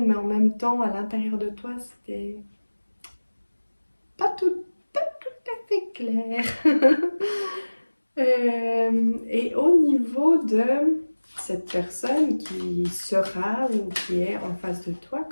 mais en même temps, à l'intérieur de toi, c'était pas tout à fait clair. Et au niveau de cette personne qui sera ou qui est en face de toi,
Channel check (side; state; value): both; inverted; correlation -1.00